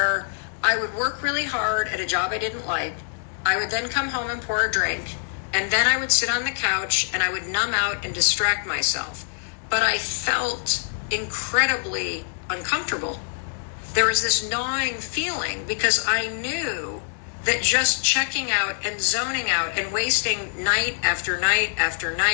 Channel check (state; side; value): silent; right; digital silence